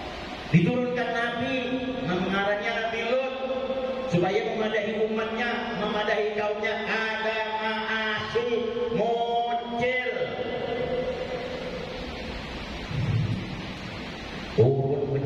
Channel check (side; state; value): both; identical; correlation 1.00